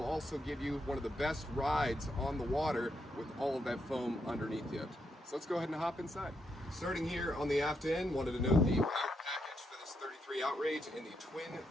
also give you one of the best rides on the water with all of that foam underneath you. So let's go ahead and hop inside. Starting here on the aft end, wanted to note the power package for this 33 Outrage in the twin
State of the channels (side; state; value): both; normal; correlation 0.80